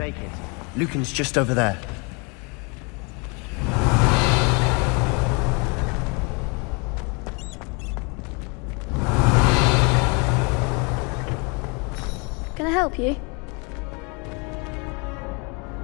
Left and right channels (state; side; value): quieter; right; 31.8 dB